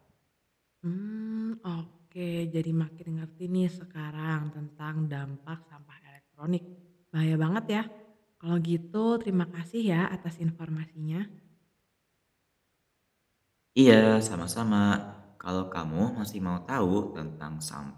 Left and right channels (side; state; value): both; identical; correlation 1.00